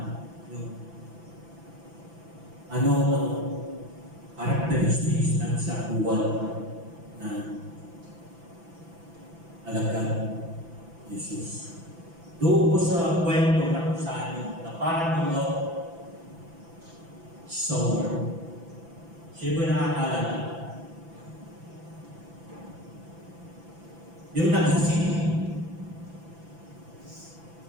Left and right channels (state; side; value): late; left; 6.0 ms